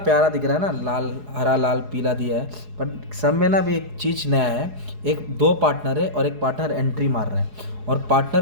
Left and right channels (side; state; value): left; late; 4.8 ms